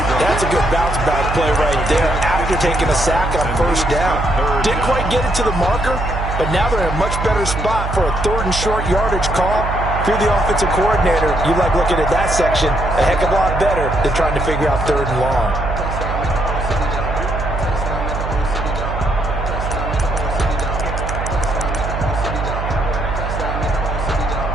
That's a good bounce-back play right there after taking a sack on first down. Didn't quite get it to the marker, but now they're in a much better spot for a 3rd and short yardage call. If you're the offensive coordinator, you like looking at that section a heck of a lot better than trying to figure out 3rd and long.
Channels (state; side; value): noise; right; hum, 4 dB below the sound